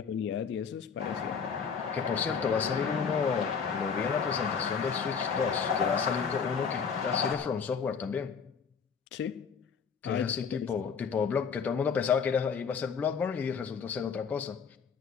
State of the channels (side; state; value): right; quieter; 6.2 dB